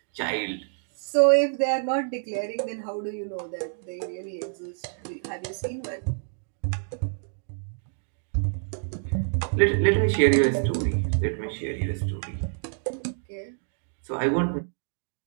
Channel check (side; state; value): left; silent; digital silence